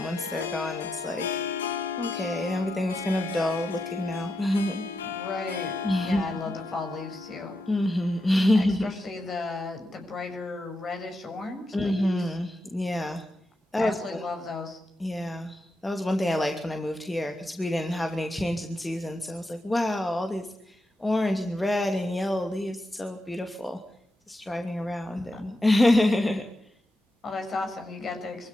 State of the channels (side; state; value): both; normal; correlation 0.86